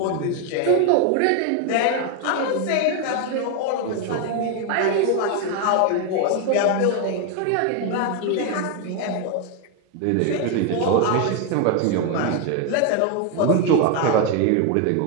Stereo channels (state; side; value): different; both; correlation 0.01